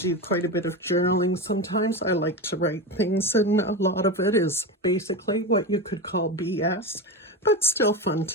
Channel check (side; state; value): both; normal; correlation 0.20